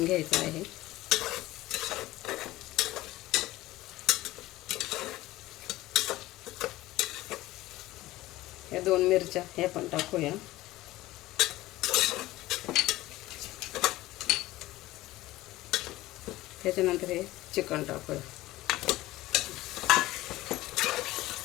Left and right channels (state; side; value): quieter; right; 17.4 dB